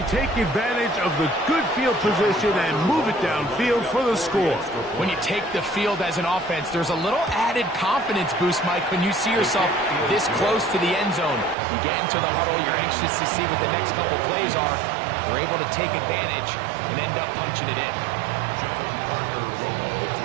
take advantage of the good field position and move it downfield for the score. When you take the field as an offense, there's a little added confidence boost, Mike, when you see yourself this close to the end zone. You get into the huddle, you're anxious to see what the next couple plays are. They're able to take advantage and end up punching it in.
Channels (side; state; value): left; drops out; at 11.6 s